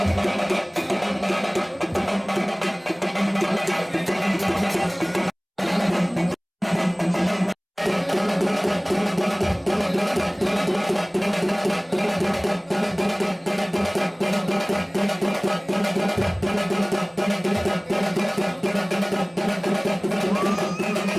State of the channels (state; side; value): identical; both; correlation 1.00